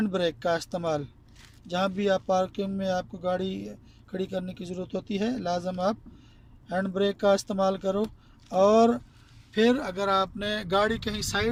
ब्रेक का इस्तेमाल जहाँ भी आप पार्किंग में आपको गाड़ी खड़ी करने की ज़रूरत होती है, लाजम आप हैंड ब्रेक का इस्तेमाल करो। और फिर अगर आपने गाड़ी कहीं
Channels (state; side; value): identical; both; correlation 1.00